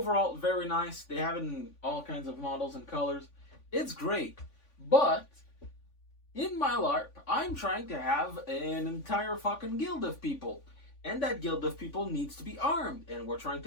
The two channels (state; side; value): late; right; 3.5 ms